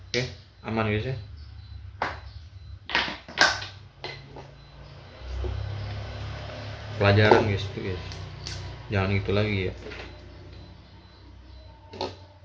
oke, aman guys ya. Pelajaran guys itu guys, jangan itu lagi ya.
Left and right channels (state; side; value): identical; both; correlation 1.00